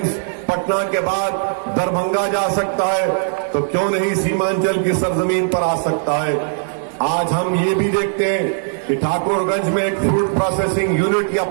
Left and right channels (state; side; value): silent; left; 67 dB below the other